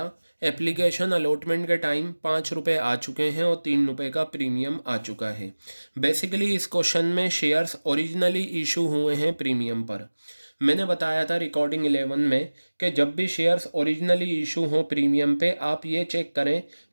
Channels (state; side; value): inverted; both; correlation -1.00